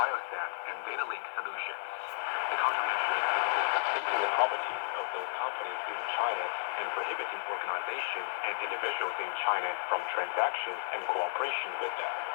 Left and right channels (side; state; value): right; silent; digital silence